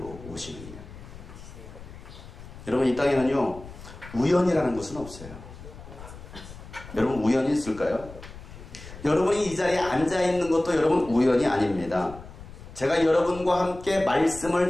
오시느니라. 여러분, 이 땅에는요 우연이라는 것은 없어요. 여러분, 우연이 있을까요? 여러분이 이 자리에 앉아있는 것도 여러분 우연이 아닙니다. 제가 여러분과 함께 말씀을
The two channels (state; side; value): noise; left; rumble, 15 dB below the sound